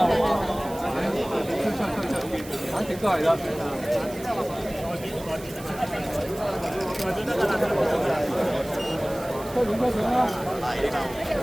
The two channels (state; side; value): noise; right; hiss, 17 dB below the sound